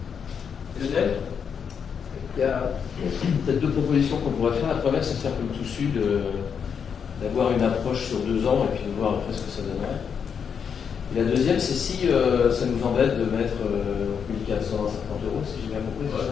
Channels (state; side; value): quieter; right; 7.0 dB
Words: Lionel ? Il y a peut-être deux propositions qu'on pourrait faire. La première, c'est de faire comme tout sud, d'avoir une approche sur 2 ans et puis de voir après ce que ça donnerait. Et la deuxième, c'est si ça nous embête de mettre 1450 €, si j'ai bien compris,